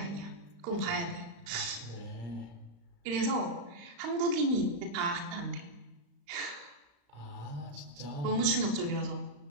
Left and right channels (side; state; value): left; late; 35 ms